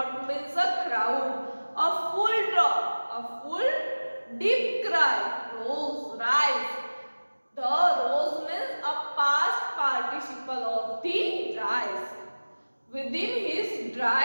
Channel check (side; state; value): both; inverted; correlation -1.00